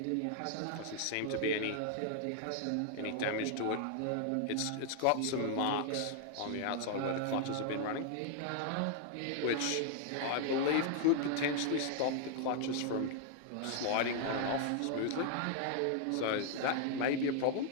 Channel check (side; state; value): both; different; correlation 0.00